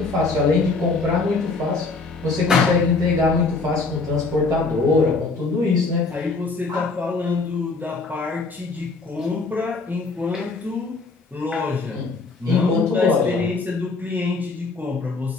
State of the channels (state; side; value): quieter; right; 3.9 dB